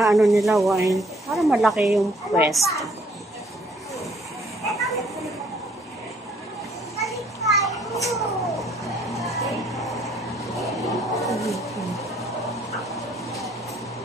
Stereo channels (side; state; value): both; normal; correlation 0.63